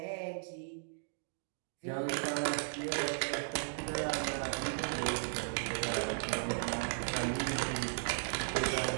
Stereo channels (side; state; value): left; silent; digital silence